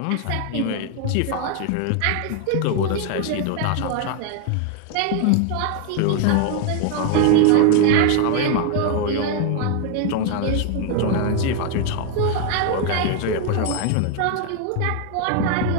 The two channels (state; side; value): different; both; correlation 0.00